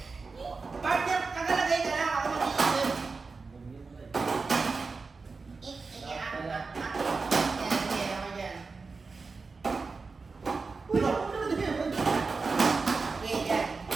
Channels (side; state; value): left; quieter; 4.3 dB